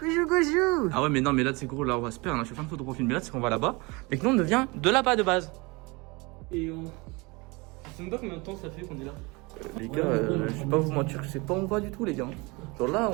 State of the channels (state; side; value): quieter; left; 26.2 dB